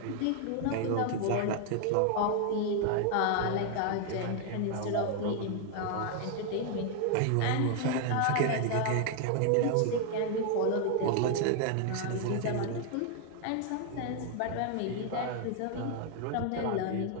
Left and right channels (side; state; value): both; different; correlation 0.00